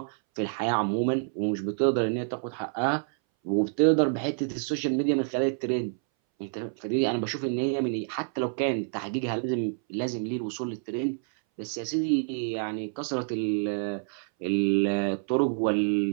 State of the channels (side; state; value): left; silent; 59 dB below the other